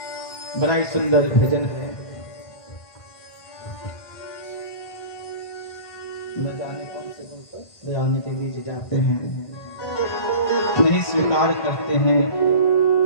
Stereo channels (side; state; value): right; late; 1.5 ms